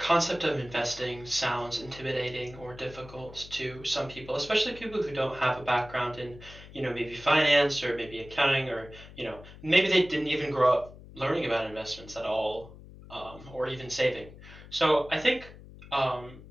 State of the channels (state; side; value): noise; left; hum, 18 dB below the sound